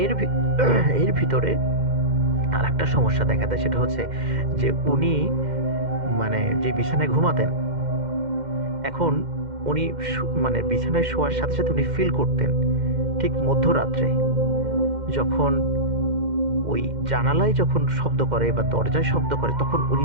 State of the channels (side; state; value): left; late; 2.1 ms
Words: এর ভিতরে আর একটা সমস্যা দেখা দেয়, সেটা হচ্ছে যে উনি মানে যে বিছানায় ঘুমাতেন, এখন উনি মানে বিছানায় শোয়ার সাথে সাথে উনি ফিল করতেন ঠিক মধ্যরাত্রে যখন ওই জানালায় যখন শব্দ করে বা দরজায় শব্দ করে, তখন উনি